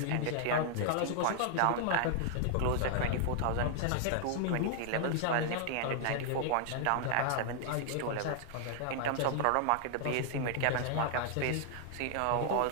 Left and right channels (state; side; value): different; both; correlation 0.00